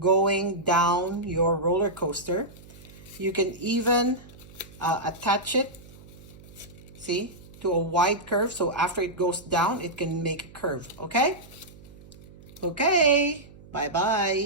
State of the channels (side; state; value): right; noise; hum, 20 dB below the sound